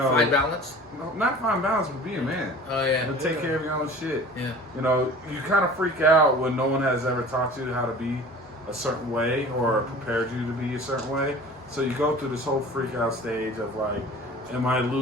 balance. No, not find balance, but be a man. Oh yeah. To take care of your own shit. Yeah. You kind of freak out when no one has ever taught you how to be a certain way or prepared you to be a certain way. So you go through this whole freak out stage of like, am I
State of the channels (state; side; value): normal; both; correlation 0.42